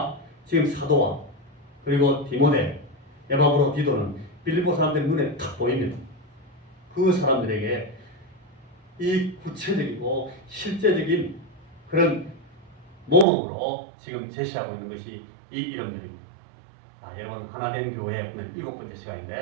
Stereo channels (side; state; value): left; drops out; at 13.2 s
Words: 지금 사도와 그리고 디모데, 에바브로디도는 빌립보 사람들의 눈에 탁 보입니다. 그 사람들에게 이 구체적이고 실제적인 그런 모범으로 지금 제시하고 있는 것이 이 이름들입니다. 여러분 하나된 교회 오늘 7번째